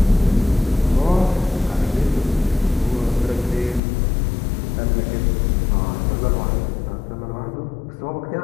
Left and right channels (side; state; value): right; drops out; at 3.8 s